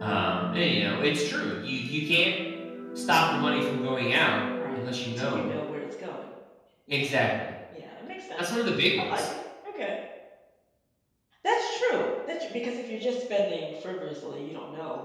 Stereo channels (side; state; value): both; identical; correlation 1.00